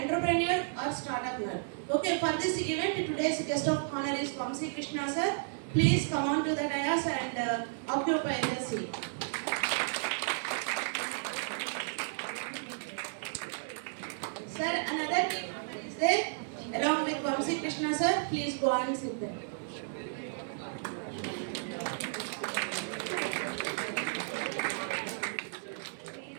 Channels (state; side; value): silent; left; 56 dB below the other